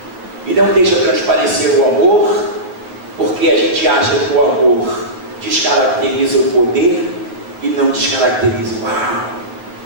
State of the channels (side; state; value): left; late; 9.3 ms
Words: e não deixa transparecer o amor, porque a gente acha que o amor descaracteriza o poder e não descaracteriza o amor.